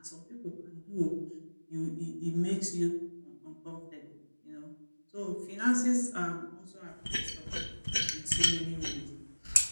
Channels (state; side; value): inverted; both; correlation -1.00